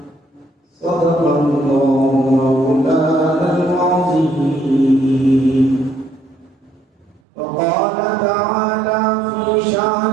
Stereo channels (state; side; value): drops out; left; at 7.2 s